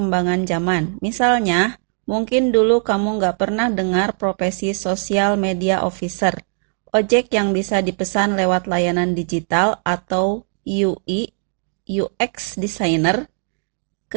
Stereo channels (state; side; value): silent; left; 63 dB below the other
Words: zaman. Misalnya, mungkin dulu kamu nggak pernah dengar profesi social media officer, ojek yang bisa dipesan lewat layanan digital, atau UI, UX designer.